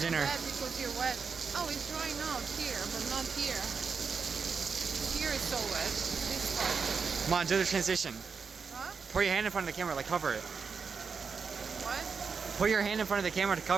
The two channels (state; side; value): quieter; left; 5.5 dB